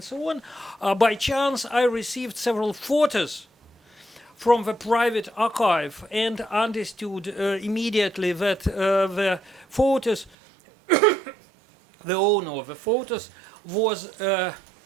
by chance I received several photos from the private archive and understood immediately that the photos, the owner of the photos was the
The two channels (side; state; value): left; drops out; at 10.4 s